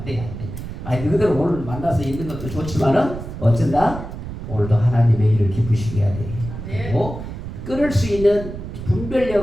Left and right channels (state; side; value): noise; right; rumble, 9 dB below the sound